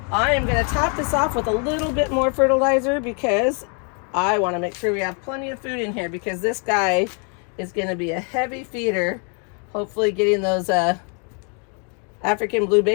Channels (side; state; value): right; quieter; 39.1 dB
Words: I am going to top this off with a little bit more fertilizer because I want to make sure we have plenty of food in here, because this guy is going to be a heavy feeder. Hopefully getting those African blue